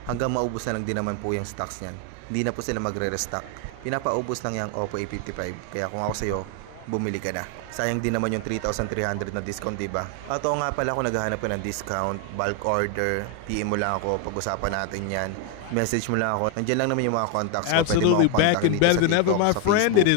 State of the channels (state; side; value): different; both; correlation 0.01